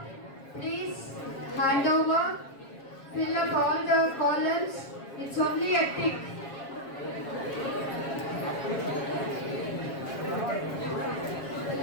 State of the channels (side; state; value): right; late; 7.3 ms